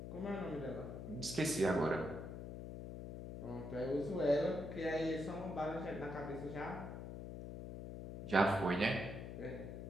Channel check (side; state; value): left; noise; hum, 8 dB below the sound